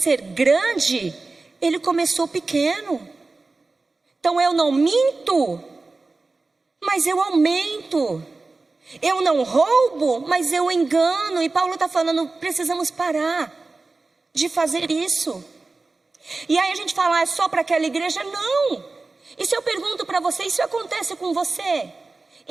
grande, ele começou pequeno. Então eu não minto, mas eu aumento. Eu não roubo, mas eu engano. E Paulo está falando: precisamos parar de fazer isso. E aí a gente fala: é só para aquela igreja? Não. E se eu pergunto para você: isso acontece com você?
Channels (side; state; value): left; quieter; 3.6 dB